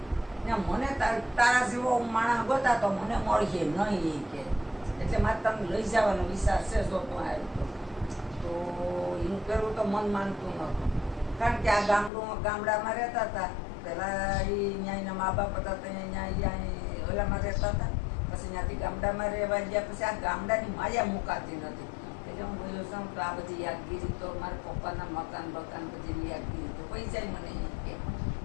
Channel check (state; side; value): drops out; right; at 12.1 s